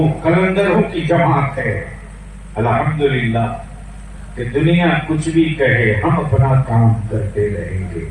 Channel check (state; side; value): identical; both; correlation 1.00